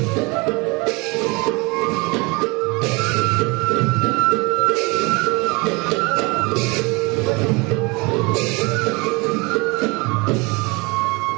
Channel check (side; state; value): left; quieter; 26.8 dB